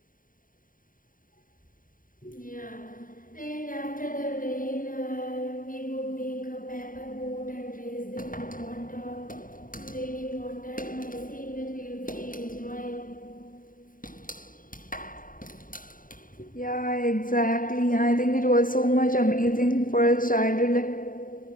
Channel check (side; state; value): right; late; 0.40 ms